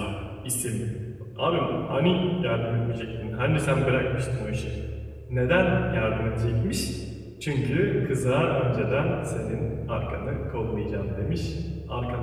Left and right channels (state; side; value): identical; both; correlation 1.00